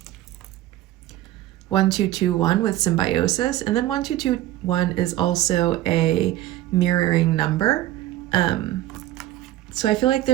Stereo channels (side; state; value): left; quieter; 14.7 dB